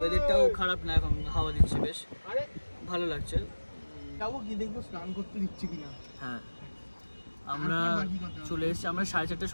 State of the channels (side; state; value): both; inverted; correlation -1.00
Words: খারাপ না, এখন হাওয়া দিচ্ছে, বেশ ভালো লাগছে। যাবো কি দেখবো স্নান করতে দিচ্ছে কিনা। হ্যাঁ, আমরা চলে এসেছি, আমরা 4:30টার